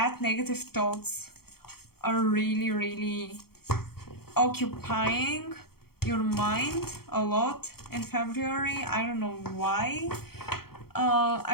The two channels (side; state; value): right; late; 0.95 ms